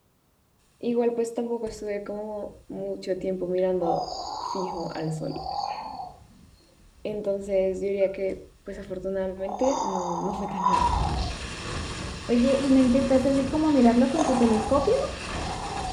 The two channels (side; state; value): both; identical; correlation 1.00